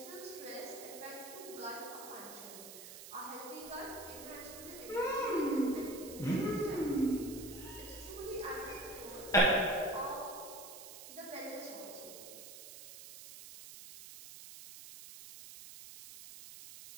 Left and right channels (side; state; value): right; noise; hiss, 13 dB below the sound